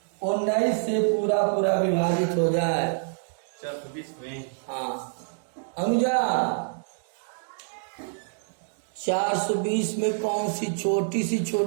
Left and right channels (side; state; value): left; silent; digital silence